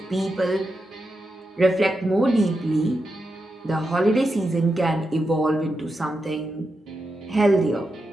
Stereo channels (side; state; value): both; normal; correlation 0.87